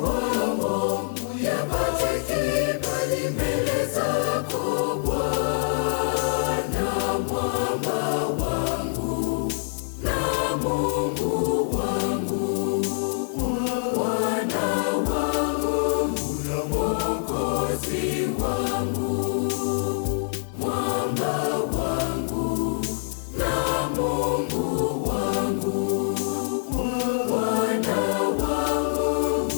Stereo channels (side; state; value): right; silent; digital silence